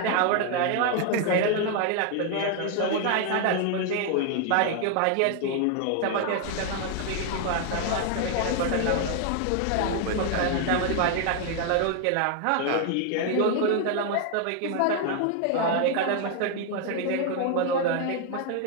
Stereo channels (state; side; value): different; both; correlation 0.00